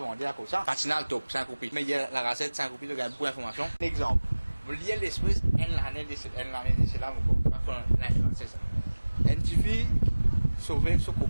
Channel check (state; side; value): inverted; both; correlation -1.00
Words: à cause ça. Patinal top, 5 copies. Mais il y a la gazette, 5 copies, de gagner beaucoup d'informations. Exemple, vous liez l'esprit, l'année de cela, c'est ça. Une fille, sauver son